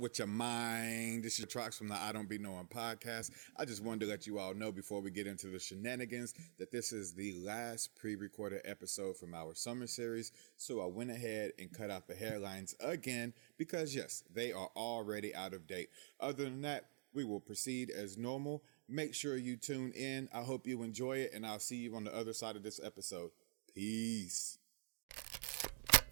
with your mind? This is Trox from the I Don't Be Knowing podcast. I just wanted to let you all know before we get into the shenanigans that this is the last pre-recorded episode from our summer series. So I went ahead and cut out the hairlines again because yes, they are already out of date. Other than that, we will proceed as normal. Make sure you tune in. I hope you enjoy it, and I'll see you on the other side of this episode. Peace.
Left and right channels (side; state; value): left; silent; digital silence